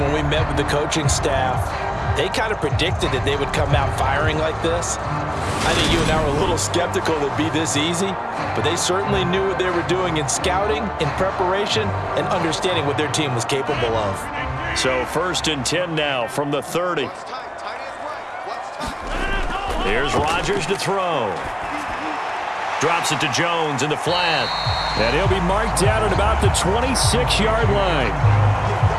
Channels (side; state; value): both; identical; correlation 1.00